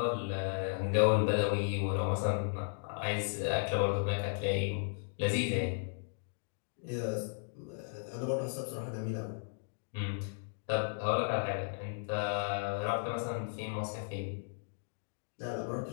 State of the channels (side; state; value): right; silent; digital silence